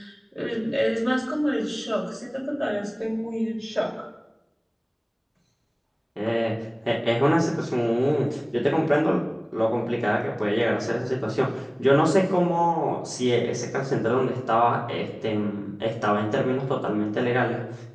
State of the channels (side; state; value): both; identical; correlation 1.00